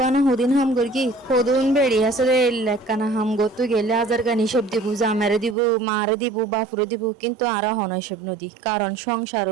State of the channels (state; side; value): drops out; left; at 5.6 s